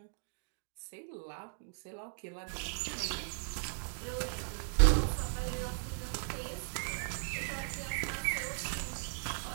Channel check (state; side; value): silent; left; digital silence